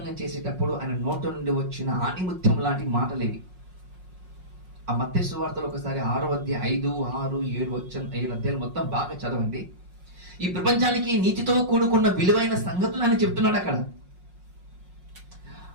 చేసేటప్పుడు ఆయన నోట నుండి వచ్చిన ఆణిముత్యం లాంటి మాటలేవి. ఆ మత్తయి సువార్తలో ఒకసారి 6వ అధ్యాయం 5, 6, 7 అధ్యాయులు మొత్తం బాగా చదవండి. ఈ ప్రపంచానికి నీతితో కూడుకున్న విలువైన సంగతులు ఆయన చెప్తున్నాడు అక్కడ.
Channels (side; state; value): left; late; 5.5 ms